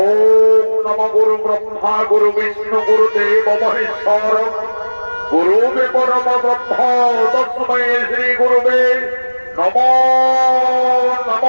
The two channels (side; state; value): both; inverted; correlation -1.00